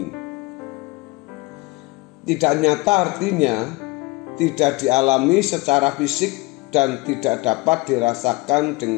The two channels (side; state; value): right; quieter; 23.7 dB